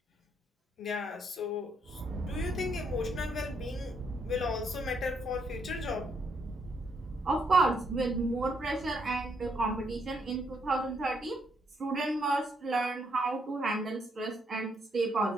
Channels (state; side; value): normal; both; correlation 0.74